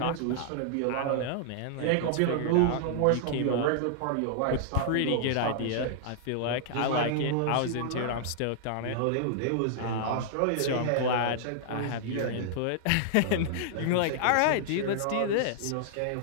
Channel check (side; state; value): both; different; correlation -0.01